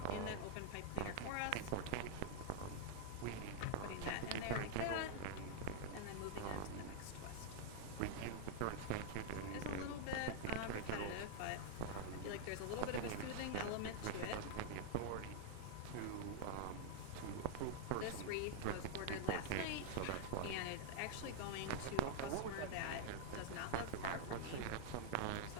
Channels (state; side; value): different; both; correlation -0.01